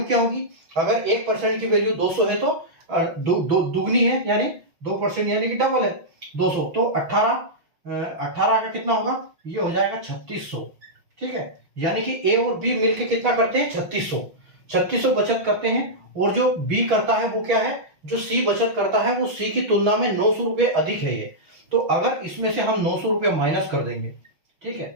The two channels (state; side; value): late; left; 6.0 ms